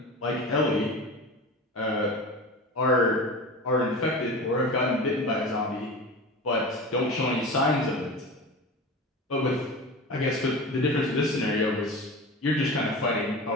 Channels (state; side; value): normal; both; correlation 0.31